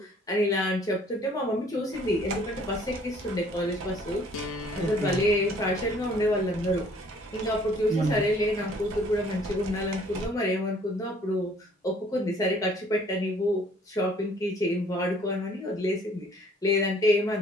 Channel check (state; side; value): normal; both; correlation 0.58